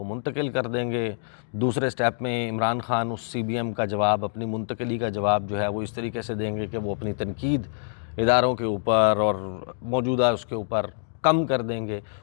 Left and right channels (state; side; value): silent; right; digital silence